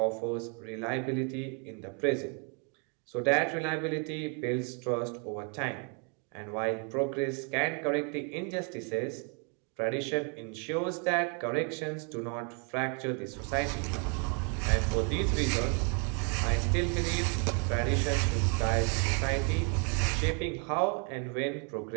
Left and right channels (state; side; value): quieter; left; 37.7 dB